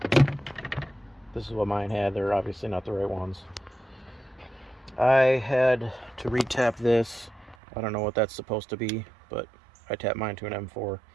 This is what mine had. They're obviously not the right ones. I had to retap this. I don't know what that's supposed to be, but I tapped mine to an M4.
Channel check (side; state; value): left; drops out; at 7.6 s